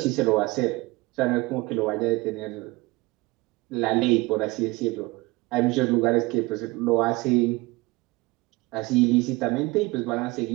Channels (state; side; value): quieter; left; 22.5 dB